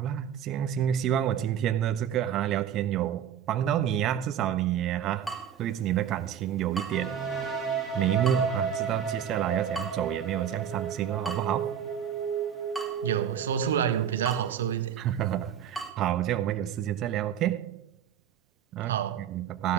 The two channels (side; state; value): left; quieter; 9.2 dB